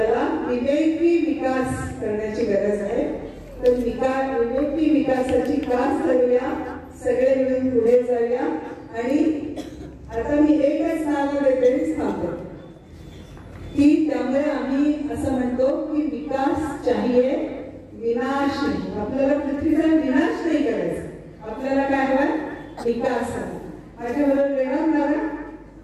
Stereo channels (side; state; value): both; identical; correlation 1.00